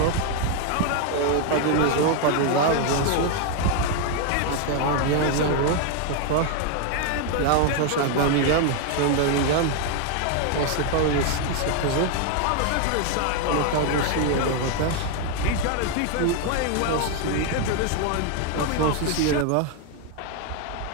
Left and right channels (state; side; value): different; both; correlation 0.01